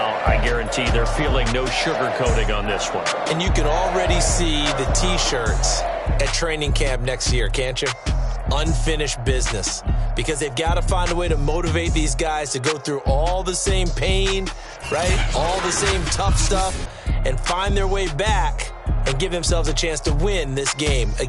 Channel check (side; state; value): both; identical; correlation 1.00